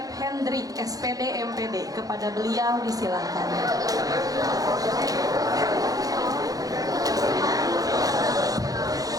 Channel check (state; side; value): late; left; 0.17 ms